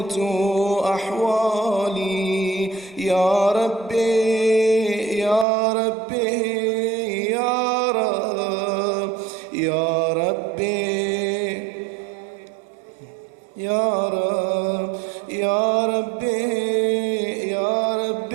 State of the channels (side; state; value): left; drops out; at 5.5 s